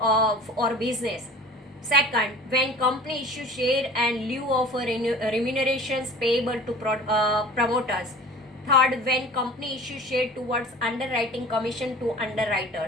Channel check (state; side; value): normal; both; correlation 0.43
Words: business. Second, when company issue share and lieu of remunerations payable to promoters. Third, when company issue share towards underwriting commission to